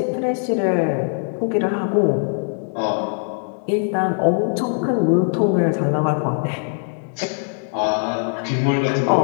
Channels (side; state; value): right; silent; digital silence